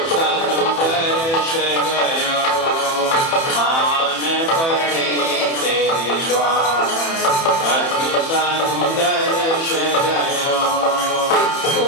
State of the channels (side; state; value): right; late; 30 ms